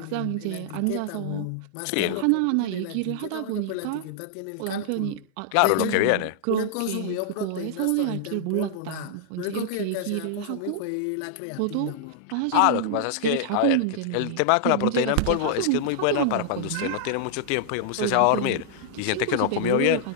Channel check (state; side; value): different; both; correlation -0.01